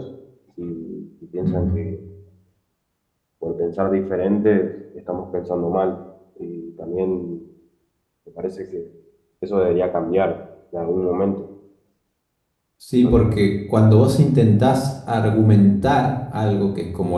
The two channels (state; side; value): identical; both; correlation 1.00